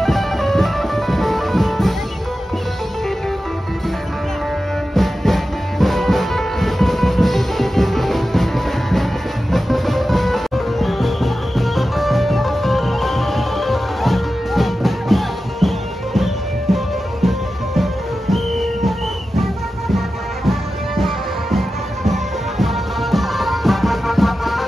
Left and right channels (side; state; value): both; normal; correlation 0.93